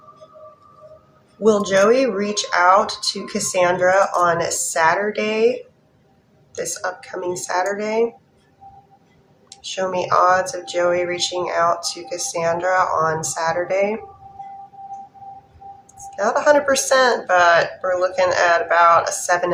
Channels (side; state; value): both; identical; correlation 1.00